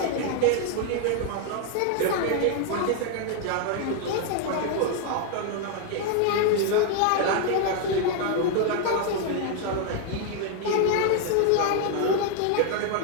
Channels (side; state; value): both; different; correlation 0.00